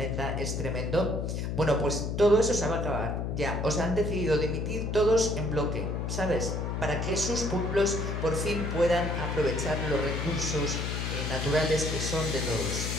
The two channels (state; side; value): noise; left; hum, 2 dB below the sound